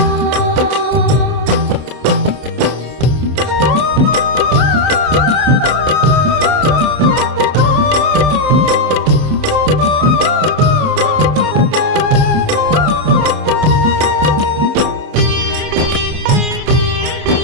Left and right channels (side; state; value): left; late; 27 ms